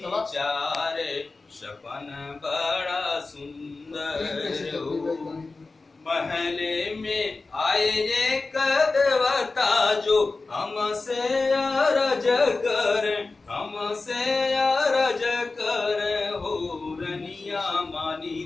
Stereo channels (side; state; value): right; quieter; 3.7 dB